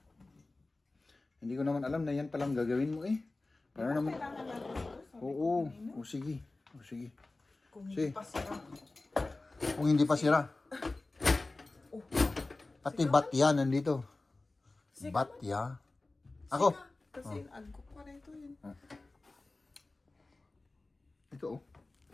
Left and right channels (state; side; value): quieter; right; 3.2 dB